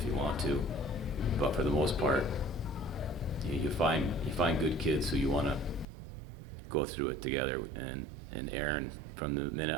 you want to. But for the most part, you find good kids who you want to go through it together. And Aaron, from the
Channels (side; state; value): left; drops out; at 5.9 s